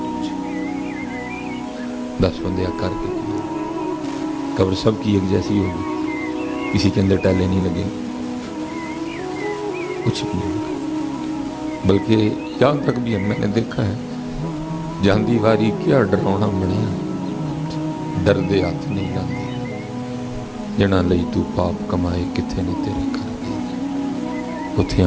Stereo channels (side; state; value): both; identical; correlation 1.00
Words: 10 بندے کر کے کیا, قبر سب کی ایک جیسی ہوگی, کسی کے اندر ٹیلے نہیں لگیں, کچھ بھی نہیں ہوگا. بلکہ یہاں تک بھی میں نے دیکھا ہے جاندی واری کیا ڈراؤنا بنیا, ڈردے ہاتھ نہیں لاندے, جنا لئی تو پاپ کمائے کتھے نے تیرے کر دے. اتھے